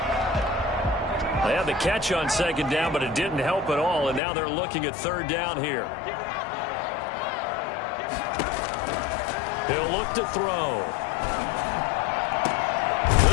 They had the catch on second down, but it didn't help at all, and now they're looking at third down here. He'll look to throw.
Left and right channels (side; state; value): right; drops out; at 4.2 s